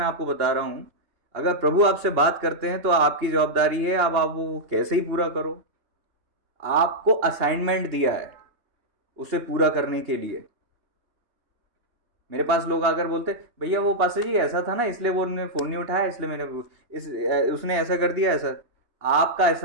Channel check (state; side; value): late; left; 2.9 ms